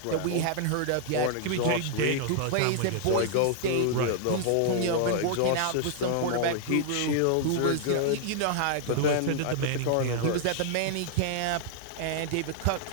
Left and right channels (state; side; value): different; both; correlation -0.01